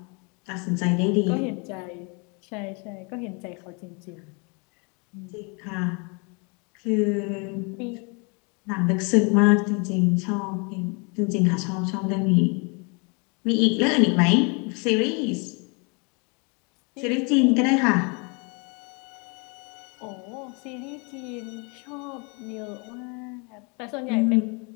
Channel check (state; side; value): quieter; right; 32.9 dB